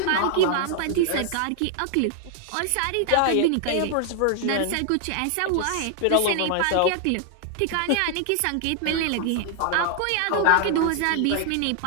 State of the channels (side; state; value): both; different; correlation 0.00